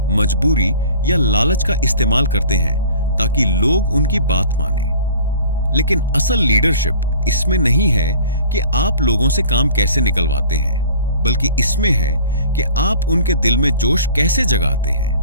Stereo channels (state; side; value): inverted; both; correlation -0.47